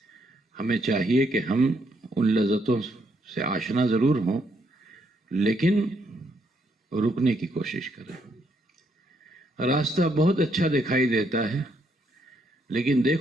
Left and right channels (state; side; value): normal; both; correlation 0.74